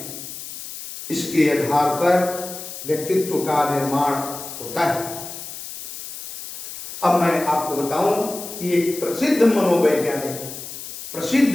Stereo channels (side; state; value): left; noise; hiss, 11 dB below the sound